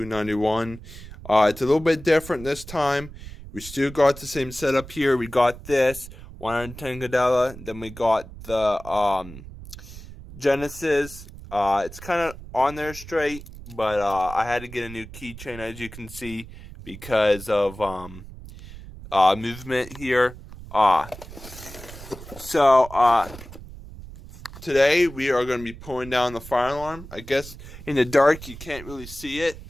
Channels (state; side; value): noise; right; rumble, 15 dB below the sound